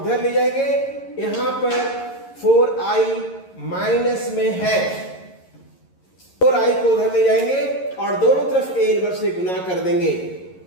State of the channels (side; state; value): right; late; 11 ms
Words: ले जाएंगे, यहां पर 4i माइनस में है, 4i को उधर ले जाएंगे और दोनों तरफ ए इनवर्स से गुना कर देंगे।